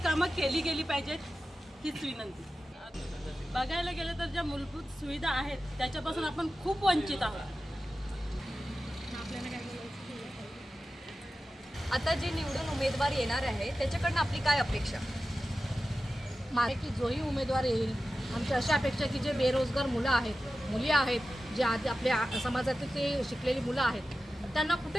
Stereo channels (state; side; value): normal; both; correlation 0.94